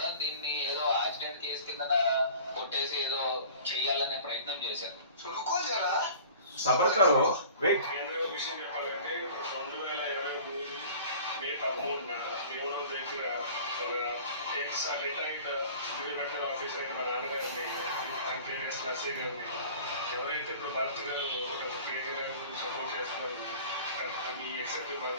దీన్ని ఏదో యాక్సిడెంట్ కేసు కింద కొట్టేసి ఏదో చెయ్యాలనే ప్రయత్నం చేశారు. సబర్కరు వెయిట్. కేంద్ర విషయం చెప్పాలంటే 2023 మే 13న భీమవరం దగ్గర ఒక రిటైర్డ్ రిటైర్డ్ ఆఫీసర్ మా నాన్నగారిని అంటే నర్సీ గారిని ఎవరైతే ఇప్పుడు భరత్ గారు ప్రియాంక గారి గురించి సపోర్ట్ చేస్తున్నారు మీ ఎక్సెప్ట్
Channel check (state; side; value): inverted; both; correlation -0.44